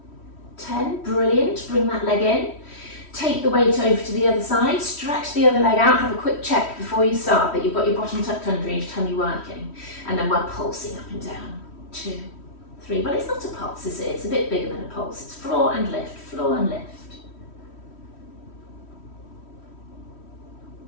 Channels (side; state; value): right; late; 3.1 ms